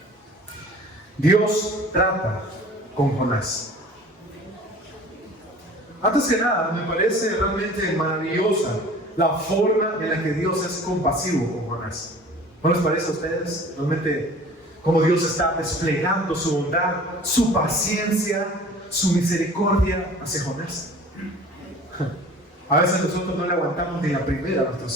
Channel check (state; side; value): normal; both; correlation 0.45